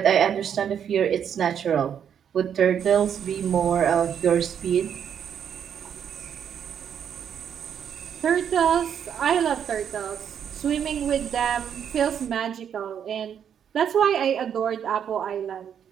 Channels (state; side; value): quieter; left; 8.5 dB